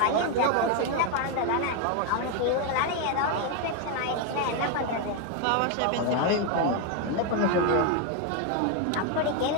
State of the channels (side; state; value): both; different; correlation 0.01